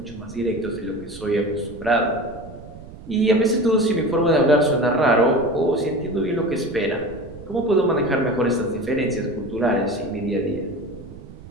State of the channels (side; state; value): right; noise; rumble, 16 dB below the sound